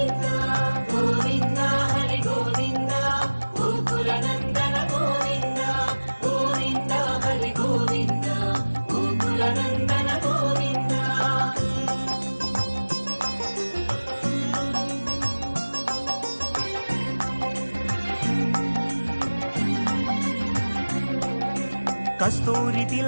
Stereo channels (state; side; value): inverted; both; correlation -1.00